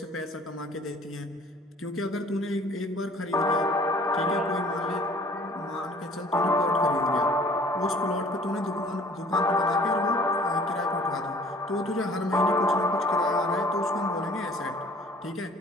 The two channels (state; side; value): normal; both; correlation 0.52